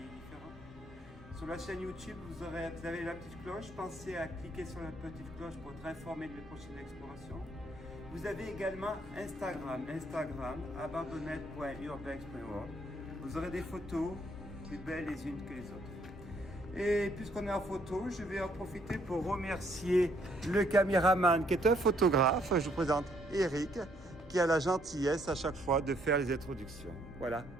Sur la chaîne YouTube, vous avez la petite cloche. Pensez à cliquer sur la petite cloche pour être informé de mes prochaines explorations. Vous avez également Instagram, abandonnette.urbex.org. Vous aurez des photos plus belles les unes que les autres. Et puisqu'on est en photo, je vais en profiter pour remercier le caméraman qui est un photographe. Je vous présente Eric, qui a la gentillesse à chaque fois de faire les introductions. Voilà,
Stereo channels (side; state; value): both; normal; correlation 0.68